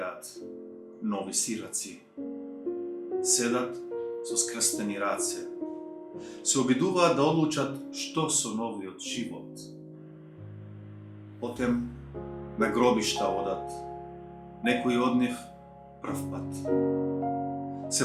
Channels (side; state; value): both; identical; correlation 1.00